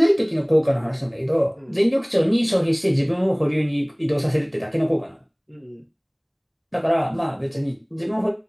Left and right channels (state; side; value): identical; both; correlation 1.00